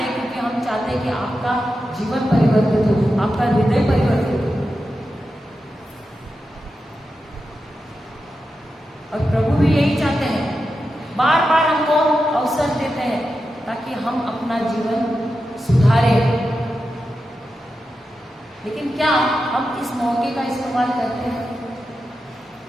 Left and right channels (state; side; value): normal; both; correlation 0.90